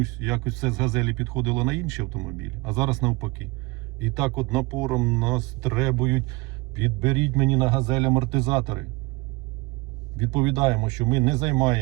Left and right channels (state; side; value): quieter; left; 23.9 dB